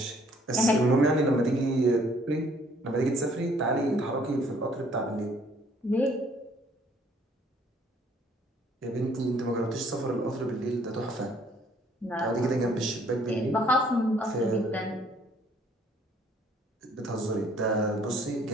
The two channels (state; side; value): normal; both; correlation 0.61